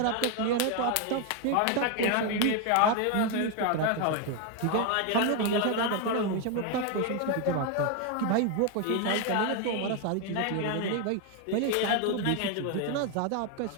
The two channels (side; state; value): both; different; correlation 0.01